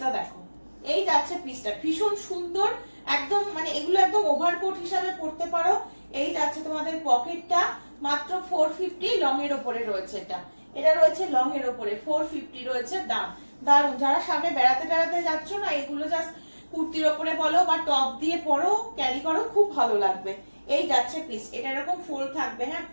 দেখো, এই যাচ্ছে পিসটা, ভীষণ সুন্দর। একদম মানে এগুলো একদম ওভারকোট হিসাবে পরতে পারো। এই যাচ্ছে তোমাদের পকেটটা, মাত্র 450 লং এর উপরে রয়েছে। এটা রয়েছে লং এর উপরে, 450 রয়েছে দাম। দারুন, যারা সামনে বেড়াতে বেড়াতে যাচ্ছ না, এগুলো জাস্ট কুর্তির ওপরে বলো বা টপ দিয়ে পরো, ক্যারি করো, খুব ভালো লাগবে। এই যাচ্ছে পিস, এটা এরকম ফোল্ড থাকবে, হ্যাঁ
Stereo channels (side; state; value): both; inverted; correlation -1.00